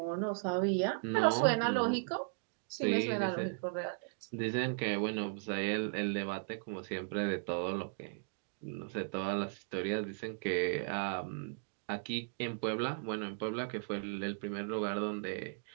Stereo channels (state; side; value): silent; left; digital silence